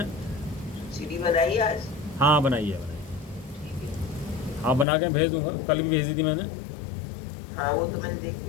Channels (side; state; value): right; drops out; at 4.9 s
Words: सीढ़ी बनाई आज। हाँ बनाइए बनाइए। ठीक है। हाँ बना के भेज दूंगा, कल भी भेज दी थी मैंने। हाँ वो तो मैंने